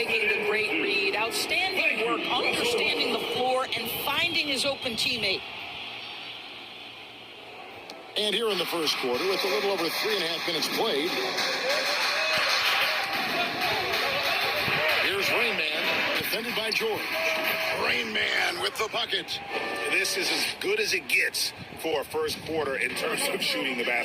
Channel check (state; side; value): identical; both; correlation 1.00